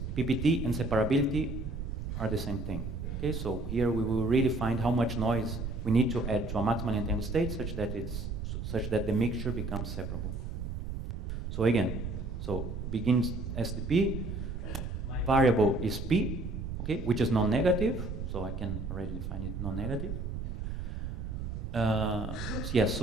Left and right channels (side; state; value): right; noise; rumble, 5 dB below the sound